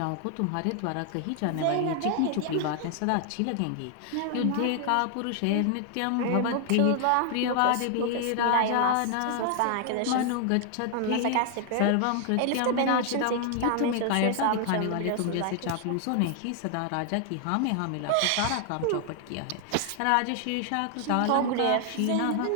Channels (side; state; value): both; different; correlation 0.00